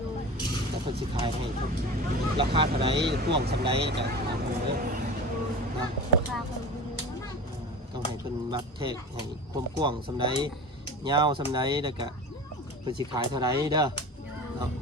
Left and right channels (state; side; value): normal; both; correlation 0.34